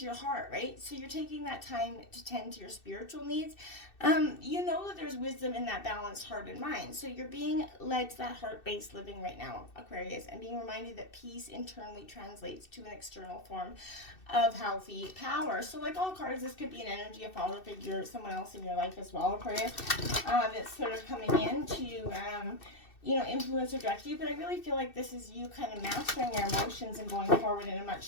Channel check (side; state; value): right; late; 2.6 ms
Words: your heart, right? So you're taking that time to tend to your spiritual needs. You know that there's wisdom in that balanced heart and mind. So you're being led to that heart-based living right now, Aquarius, and being reminded that peace internally translates to an external form of healthy power. So like all cards, this could be an energy, a father figure, someone else in your life as well, Aquarius, that's sort of coming in to influence or direct you. But I really feel like this is you kind of mastering your emotions and going forward in a